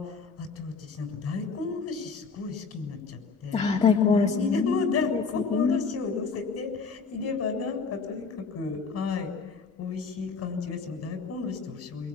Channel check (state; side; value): quieter; right; 4.8 dB